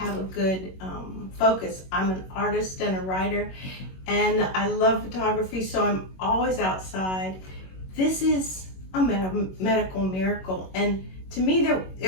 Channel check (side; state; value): right; late; 21 ms